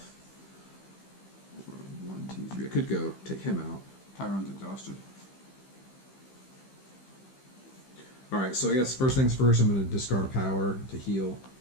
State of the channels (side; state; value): right; late; 15 ms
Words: 1, 2, 3. I could go take him out. Tyrone's exhausted. Alright, so I guess first things first, I'm going to discard a power to heal.